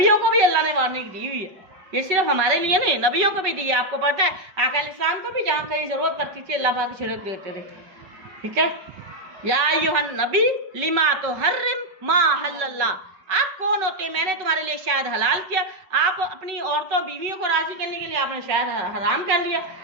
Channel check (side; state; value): left; late; 5.3 ms